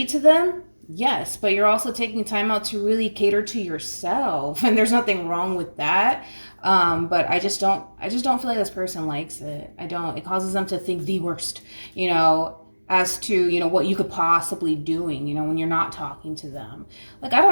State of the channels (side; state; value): both; inverted; correlation -1.00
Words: to them? Yes, but you're also taking time out to really cater to yourself, and there's nothing wrong with that. But I just don't feel like this person likes it. I don't. It causes them to think the worst, as to, what you could possibly doing, when you're not talking to them. Like, I